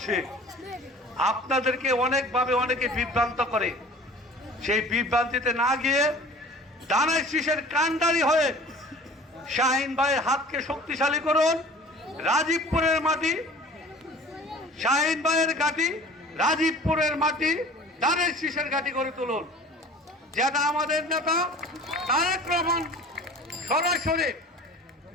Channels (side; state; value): both; normal; correlation 0.45